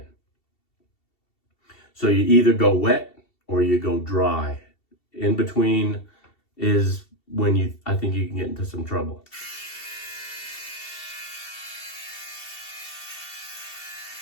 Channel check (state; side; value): late; right; 2.7 ms